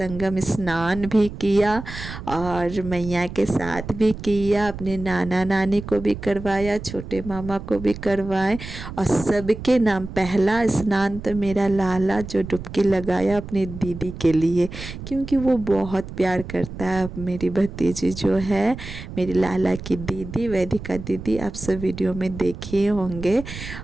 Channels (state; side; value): noise; right; rumble, 11 dB below the sound